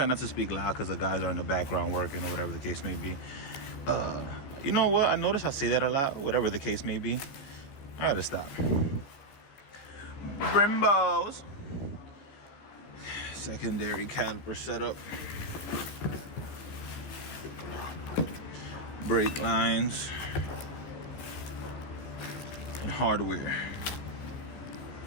not to speak loud because the guys are in the background working or whatever the case may be. You know what? I notice I say that a lot, whatever the case may be. I gotta stop. Brimbos. Secondary caliper setup. Brake lines. And hardware.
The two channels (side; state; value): right; late; 15 ms